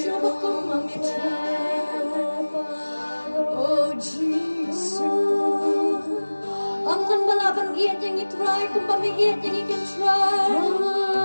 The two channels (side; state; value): both; inverted; correlation -1.00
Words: kong mamitay. Oh, Jesus. Ang kan balaban iyan yang itry, kung pamiiyan yang ikan